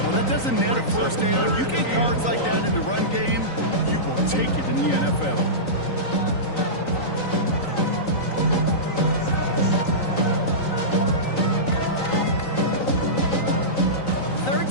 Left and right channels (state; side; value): late; right; 3.9 ms